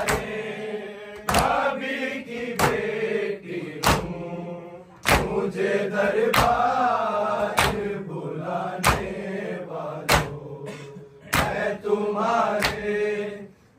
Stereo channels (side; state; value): both; identical; correlation 1.00